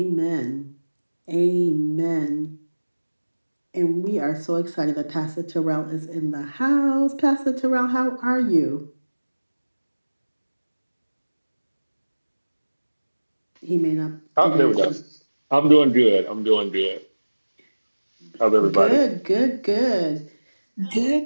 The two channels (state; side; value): inverted; both; correlation -1.00